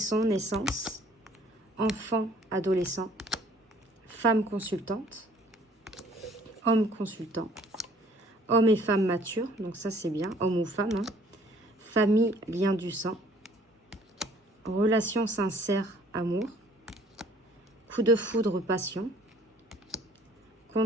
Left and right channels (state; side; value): normal; both; correlation 0.57